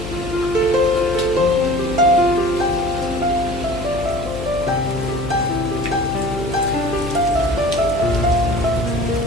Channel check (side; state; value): left; noise; hum, 9 dB below the sound